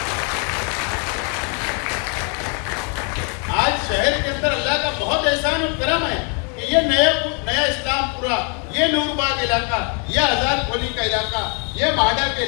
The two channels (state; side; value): quieter; right; 38.4 dB